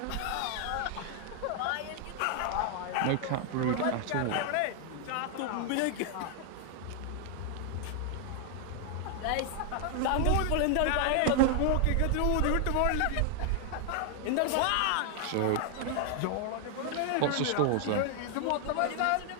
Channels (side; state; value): both; different; correlation 0.00